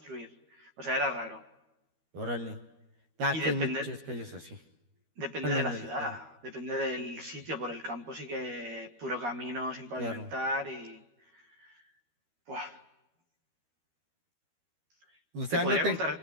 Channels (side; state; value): left; late; 13 ms